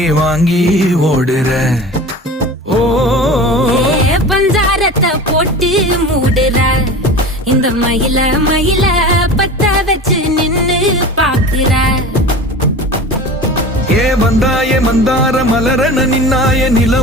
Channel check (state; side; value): normal; both; correlation 0.35